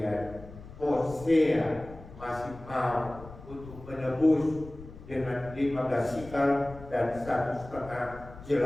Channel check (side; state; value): left; noise; rumble, 16 dB below the sound